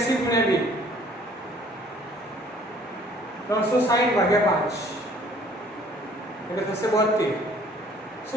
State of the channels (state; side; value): normal; both; correlation 0.57